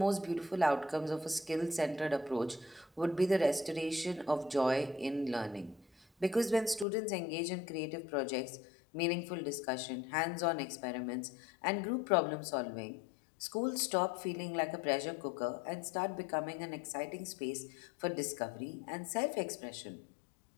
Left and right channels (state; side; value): drops out; right; at 6.9 s